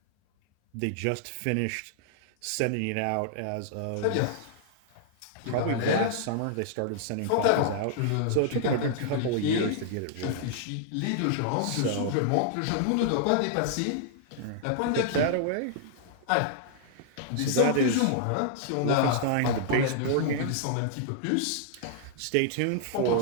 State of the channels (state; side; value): different; both; correlation -0.01